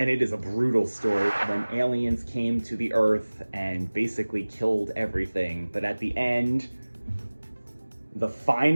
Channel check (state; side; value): inverted; both; correlation -1.00